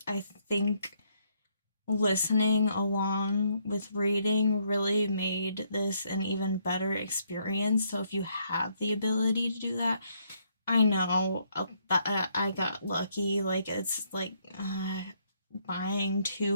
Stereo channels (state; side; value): inverted; both; correlation -0.72